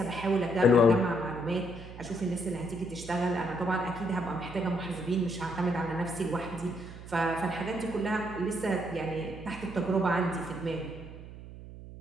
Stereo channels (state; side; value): noise; right; hum, 14 dB below the sound